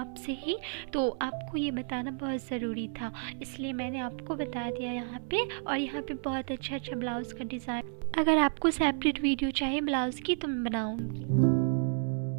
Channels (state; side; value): silent; left; 57 dB below the other